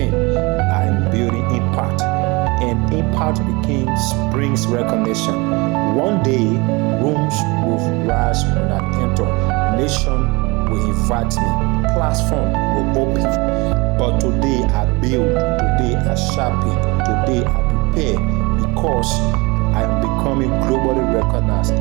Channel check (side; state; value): left; quieter; 25.7 dB